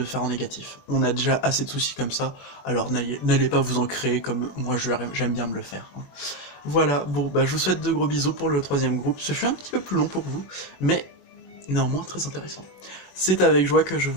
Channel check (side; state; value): right; late; 21 ms